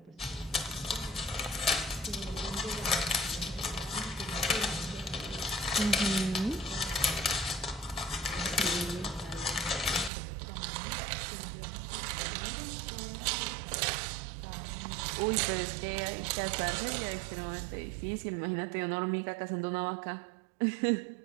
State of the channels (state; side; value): drops out; left; at 10.1 s